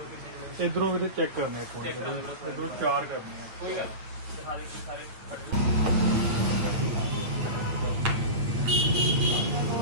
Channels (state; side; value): late; left; 8.8 ms